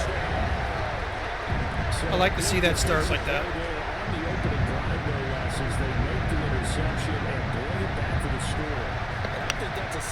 I like to see that start like that. On the opening drive, no less, as they make the interception and bring it back to the score. I think that's a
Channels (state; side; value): identical; both; correlation 1.00